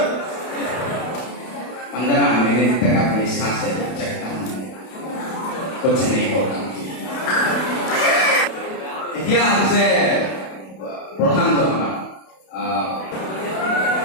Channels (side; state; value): right; late; 31 ms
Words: 15 मिनट तक अपनी सांसें चकता हूं कुछ नहीं होता इतिहास से प्रधान जो